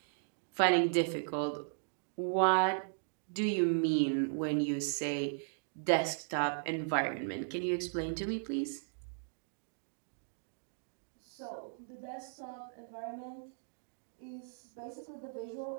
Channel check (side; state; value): left; silent; digital silence